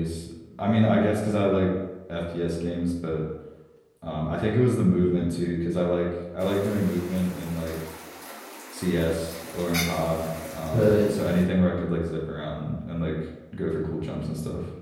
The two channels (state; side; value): identical; both; correlation 1.00